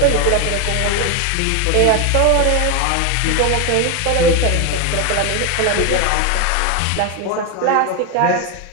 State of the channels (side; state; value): both; different; correlation 0.01